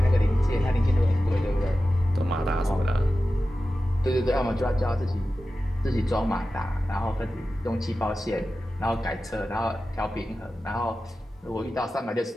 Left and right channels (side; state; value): both; normal; correlation 0.94